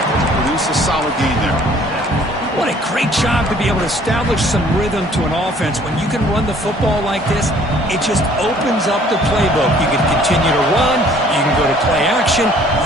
to produce a solid gain there. What a great job to be able to establish some rhythm to an offense. When you can run the football like this, it just opens up the playbook. You can continue to run. You can go to play action.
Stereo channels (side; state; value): both; normal; correlation 0.57